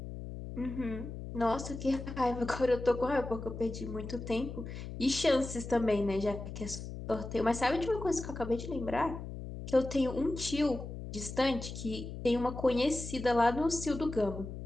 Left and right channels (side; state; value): left; noise; hum, 9 dB below the sound